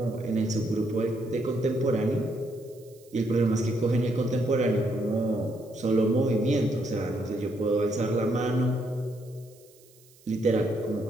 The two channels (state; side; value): noise; right; hiss, 27 dB below the sound